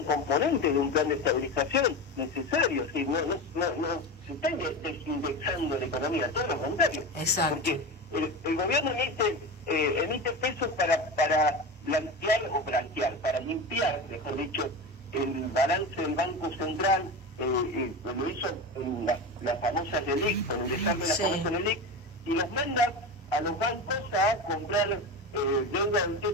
componente de un plan de estabilización necesario, ¿sí? No se está desindexando la economía, todo lo contrario. Exacto. Porque el gobierno emite pesos para para limpiar, mejor dicho, el balance del Banco Central, lo hizo en la famosa LELIC, con el desarme de la famosa LELIC, y los manda a los bancos a comprar deuda del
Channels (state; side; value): normal; both; correlation 0.24